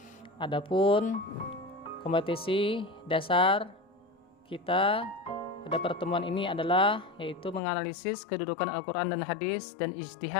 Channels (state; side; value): drops out; right; at 7.6 s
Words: Adapun kompetisi dasar kita pada pertemuan ini adalah yaitu menganalisis kedudukan Al-Quran dan Hadis dan